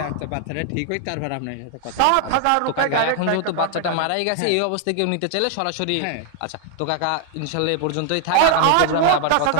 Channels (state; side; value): different; both; correlation 0.00